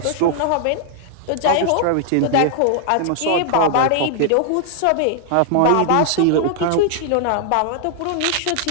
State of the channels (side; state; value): both; different; correlation 0.00